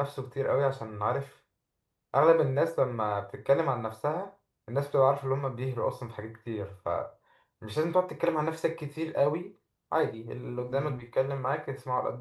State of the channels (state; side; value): identical; both; correlation 1.00